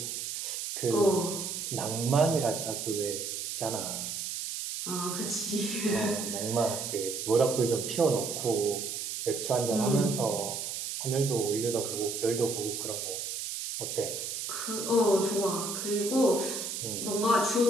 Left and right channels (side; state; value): right; noise; hiss, 5 dB below the sound